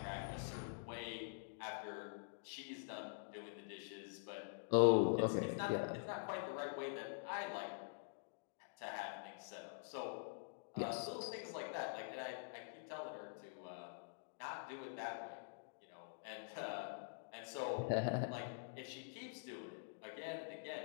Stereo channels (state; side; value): silent; right; digital silence